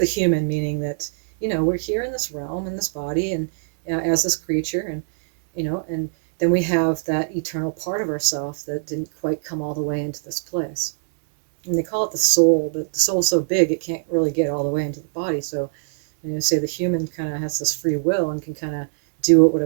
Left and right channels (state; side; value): silent; left; digital silence